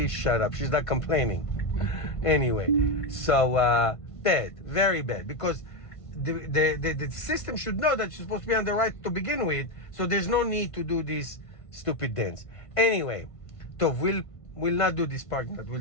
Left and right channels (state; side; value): late; right; 1.5 ms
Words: shut up. She's not complaining. Anyway, so bad, very bad, because the system should know that you're supposed to be on the right to begin with, so there's no need to do this stupid dance. Anyway, so we'll not do this parking